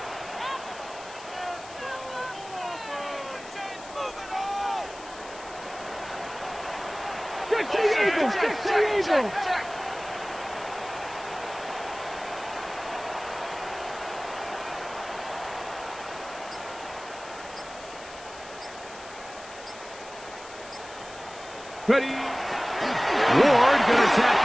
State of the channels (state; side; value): noise; left; hiss, 17 dB below the sound